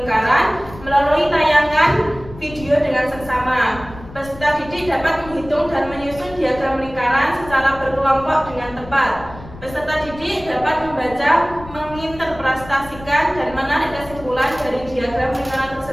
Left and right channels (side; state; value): left; noise; rumble, 17 dB below the sound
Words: melalui tayangan video dengan seksama. Peserta didik dapat menghitung dan menyusun diagram lingkaran secara berkelompok dengan tepat. Peserta didik dapat membaca, menginterpretasikan, dan menarik kesimpulan dari diagram lingkaran